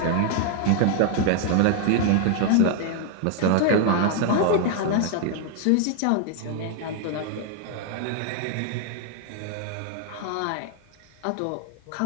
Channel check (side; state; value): both; different; correlation 0.00